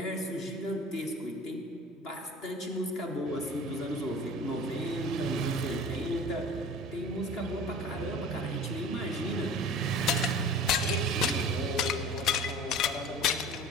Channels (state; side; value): normal; both; correlation 0.40